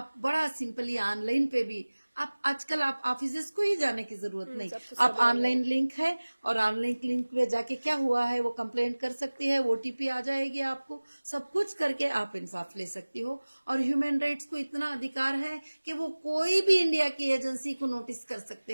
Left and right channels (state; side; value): inverted; both; correlation -1.00